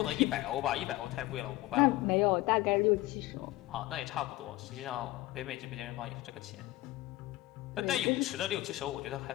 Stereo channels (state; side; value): quieter; right; 17.7 dB